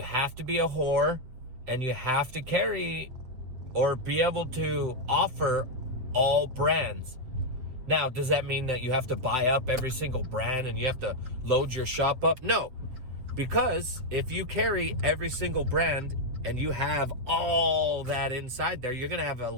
to be a whore and you have to carry or be able to offer all brands. Now, does that mean that you have to buy up every single brand and you have to load your shop up? No, because if you carry every single brand and you have all that inside there, you're going to have a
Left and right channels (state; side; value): late; left; 8.0 ms